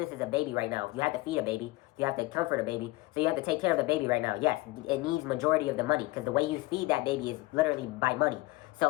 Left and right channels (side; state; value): right; quieter; 20.5 dB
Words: is a baby right now. You have to feed a baby. You have to comfort a baby. So you have to take care of the baby right now. Yes, it needs majority of the money because the way you feed that baby is literally by money.